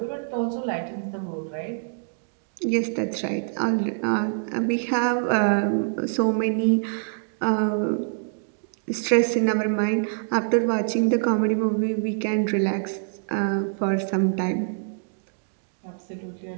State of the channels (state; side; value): silent; left; digital silence